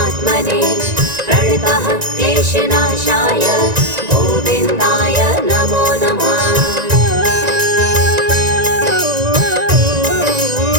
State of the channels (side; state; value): left; late; 1.9 ms